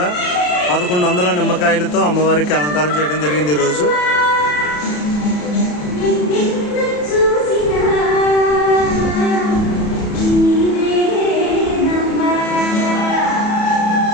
1100 నిమ్మకాయలతో అమ్మవారికి అలంకారం చేయడం జరిగింది. ఈరోజు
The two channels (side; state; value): right; late; 34 ms